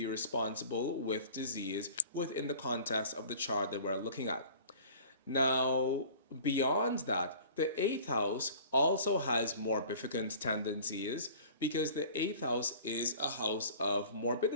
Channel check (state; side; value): inverted; both; correlation -0.45